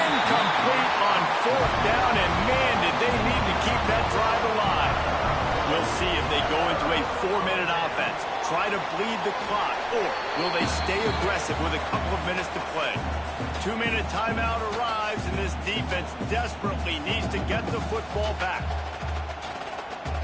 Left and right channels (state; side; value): identical; both; correlation 1.00